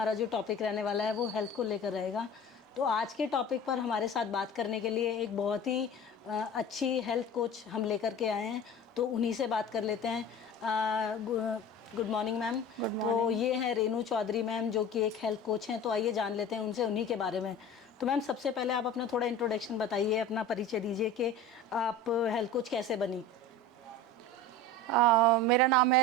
जो टॉपिक रहने वाला है वो हेल्थ को लेकर रहेगा। तो आज के टॉपिक पर हमारे साथ बात करने के लिए एक बहुत ही अच्छी हेल्थ कोच हम लेकर के आए हैं, तो उन्हीं से बात कर लेते हैं। Good morning ma'am. तो ये हैं रेनू चौधरी मैम, जो कि एक हेल्थ कोच हैं। तो आइए जान लेते हैं उनसे उन्हीं के बारे में। तो मैम, सबसे पहले आप अपना थोड़ा इंट्रोडक्शन बताइए, अपना परिचय दीजिए कि आप हेल्थ कोच कैसे बनी। मेरा नाम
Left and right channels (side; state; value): both; normal; correlation 0.36